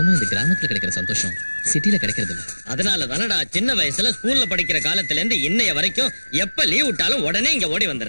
இந்த கிராமத்துல கிடைக்கிற சந்தோஷம் சிட்டில கிடைக்கிறது இல்ல. அதனால தானடா சின்ன வயசுல ஸ்கூல்ல படிக்கிற காலத்துல இருந்து இன்னைய வரைக்கும் எப்ப லீவ் விட்டாலும் உடனே இங்க ஓடி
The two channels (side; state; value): both; inverted; correlation -1.00